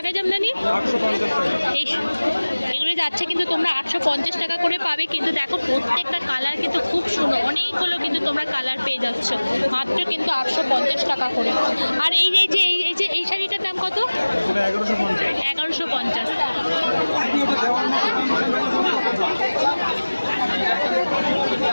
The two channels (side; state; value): both; inverted; correlation -1.00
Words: জামদানি? এগুলো যাচ্ছে কিন্তু তোমরা 850 টাকা করে পাবে। কিন্তু দেখো প্রত্যেকটা কালার কিন্তু খুব সুন্দর, অনেকগুলো কিন্তু তোমরা কালার পেয়ে যাচ্ছ মাত্র কিন্তু 850 টাকা করে। আর এই শাড়িটার দাম কত? 1150।